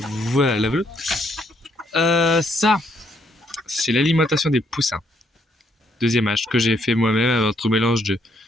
la volière. Ça, c'est l'alimentation des poussins. Deuxième âge que j'ai fait moi-même avec un mélange de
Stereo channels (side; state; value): both; normal; correlation 0.72